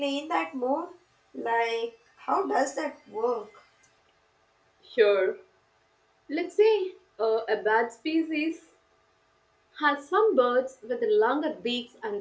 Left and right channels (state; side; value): identical; both; correlation 1.00